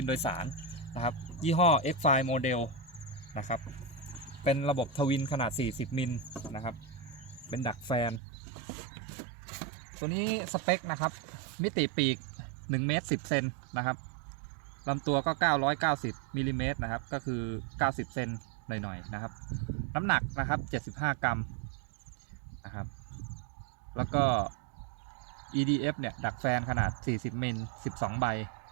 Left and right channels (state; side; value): drops out; left; at 8.2 s